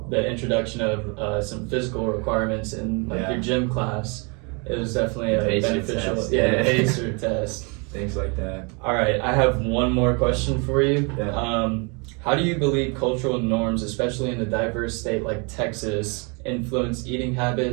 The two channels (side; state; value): left; quieter; 32.8 dB